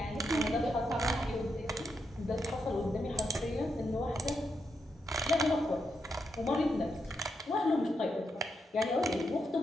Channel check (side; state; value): both; normal; correlation 0.83